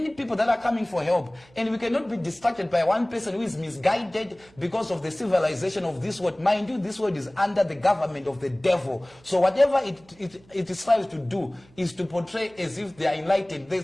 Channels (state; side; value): noise; right; hum, 28 dB below the sound